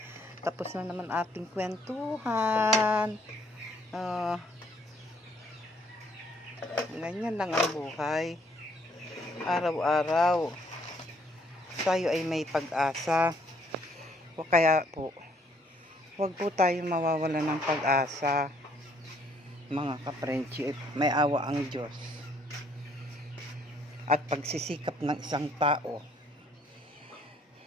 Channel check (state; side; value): normal; both; correlation 0.65